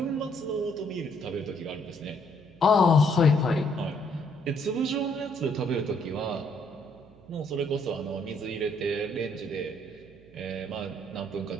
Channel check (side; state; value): right; noise; hum, 24 dB below the sound